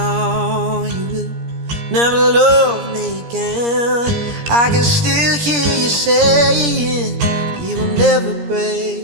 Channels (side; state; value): left; late; 17 ms